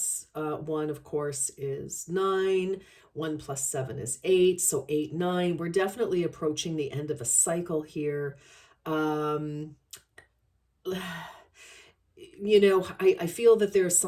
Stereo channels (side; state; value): both; identical; correlation 1.00